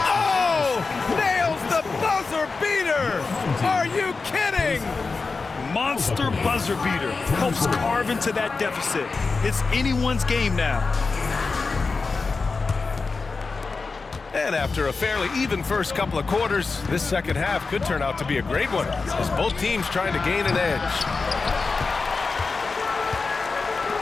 Oh! Nails the buzzer beater! Are you kidding? Monster buzzer beater. Helps carve into that deficit. It's anyone's game now. And after a fairly even first couple of quarters, this second half could turn out to be a great one, as both teams trying to gain an edge.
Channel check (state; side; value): quieter; right; 4.3 dB